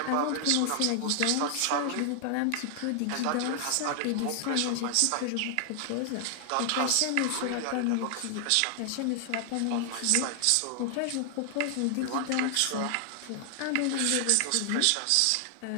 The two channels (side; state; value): both; different; correlation 0.00